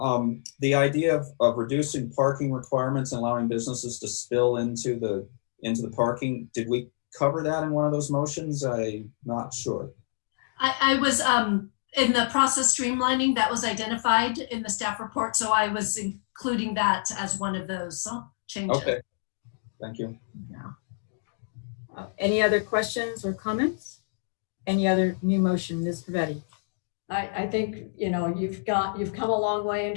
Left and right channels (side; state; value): right; silent; digital silence